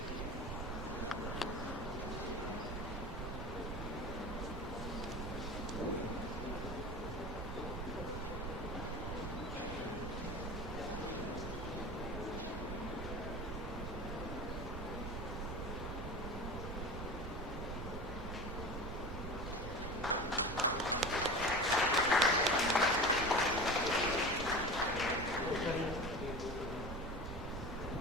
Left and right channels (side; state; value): right; noise; rumble, 5 dB below the sound